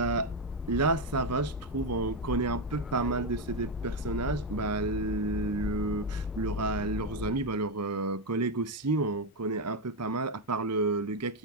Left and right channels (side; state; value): both; normal; correlation 0.06